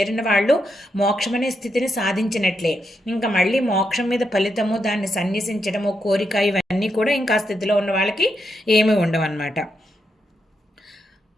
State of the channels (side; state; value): both; normal; correlation 0.82